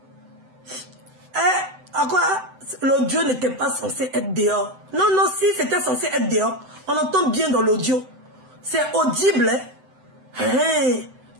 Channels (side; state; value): left; late; 7.9 ms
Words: À quoi l'audio n'était pas censé être dehors? Non, non, si c'était censé être dehors, on entend bien dans l'audio. C'est audible. Hein?